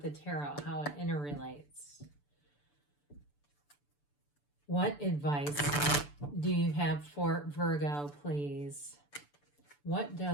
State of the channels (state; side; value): late; right; 6.9 ms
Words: the tarot, how it interrelates. What advice do you have for Virgo, please? What